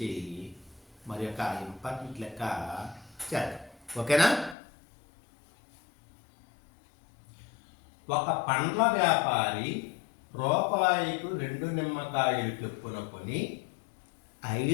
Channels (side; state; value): right; drops out; at 4.5 s